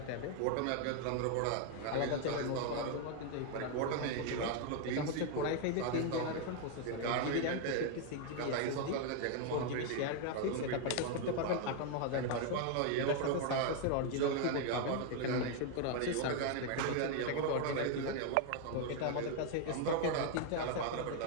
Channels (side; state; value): both; different; correlation 0.01